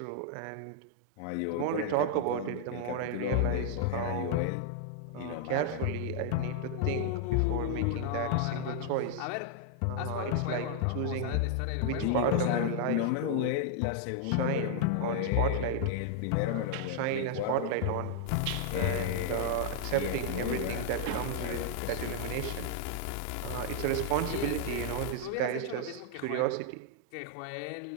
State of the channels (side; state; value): both; different; correlation 0.00